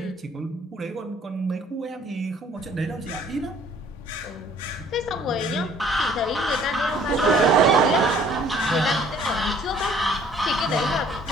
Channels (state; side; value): normal; both; correlation 0.57